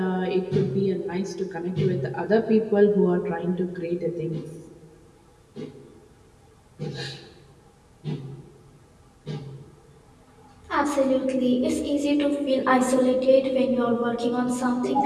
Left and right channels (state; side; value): identical; both; correlation 1.00